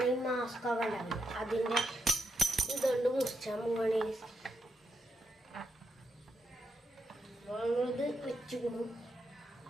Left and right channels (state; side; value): normal; both; correlation 0.83